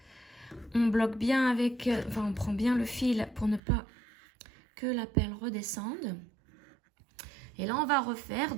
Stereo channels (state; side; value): drops out; left; at 3.6 s